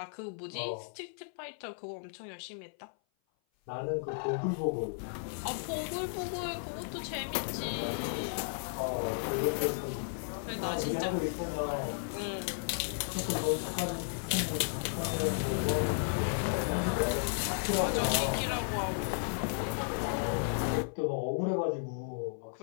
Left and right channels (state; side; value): silent; right; 55 dB below the other